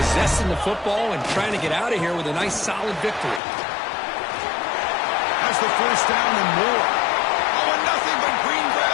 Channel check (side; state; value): right; drops out; at 3.4 s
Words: possessing the football, and trying to get out of here with a nice, solid victory. Has the first down and more. Oh, and nothing but green